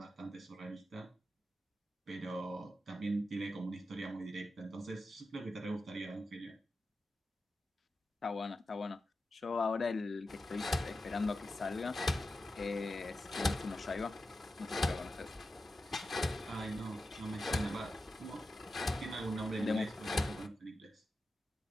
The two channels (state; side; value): normal; both; correlation 0.91